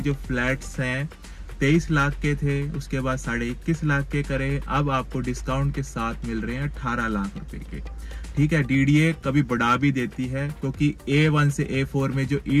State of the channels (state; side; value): identical; both; correlation 1.00